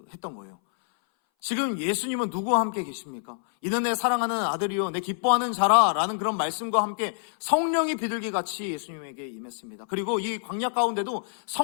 거예요. 지금 예수님은 누구와 함께 계십니까? 이는 내 사랑하는 아들이요 내 기뻐하는 자라 라는 그런 말씀과 함께 성령이 비둘기같이 예수님에게 임했습니다. 그리고 이 광야 가운데도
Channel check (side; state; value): right; silent; 59 dB below the other